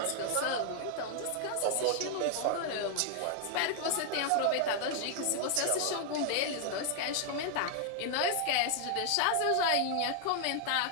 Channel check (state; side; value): different; both; correlation 0.00